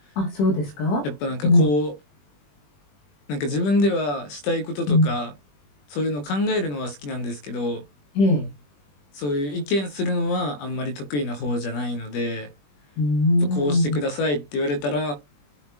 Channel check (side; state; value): right; late; 21 ms